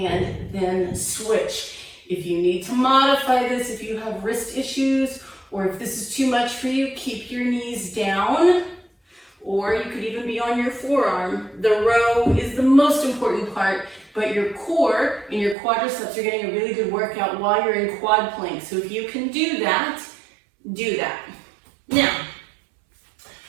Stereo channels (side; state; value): left; drops out; at 15.6 s